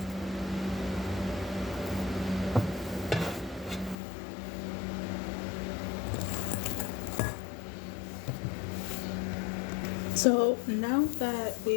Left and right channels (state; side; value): drops out; right; at 4.0 s